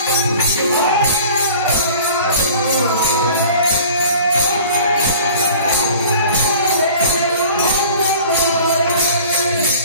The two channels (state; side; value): inverted; both; correlation -0.46